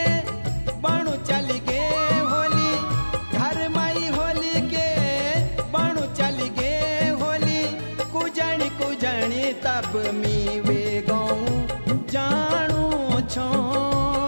बणु चल गे होली घर माई होली के बणु चल गे होली। कुजणी कुजणी तब मी वे गो जानू छो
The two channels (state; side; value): inverted; both; correlation -1.00